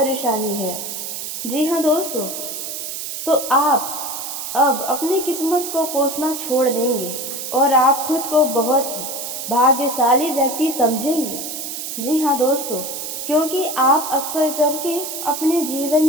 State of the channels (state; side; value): noise; right; hiss, 6 dB below the sound